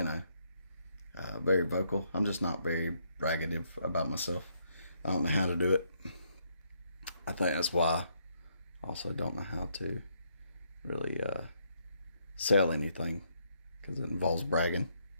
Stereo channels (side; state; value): both; inverted; correlation -0.74